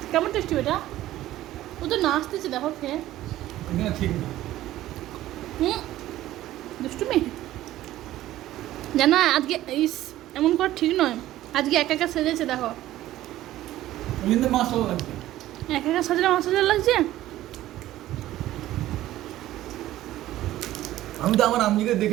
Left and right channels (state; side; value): quieter; left; 14.5 dB